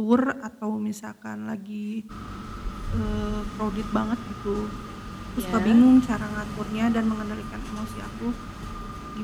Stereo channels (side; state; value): both; identical; correlation 1.00